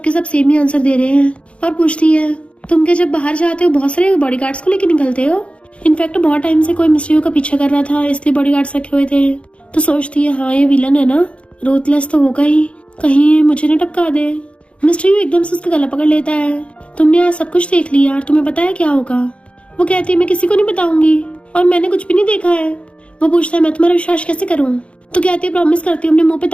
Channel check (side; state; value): right; late; 0.060 ms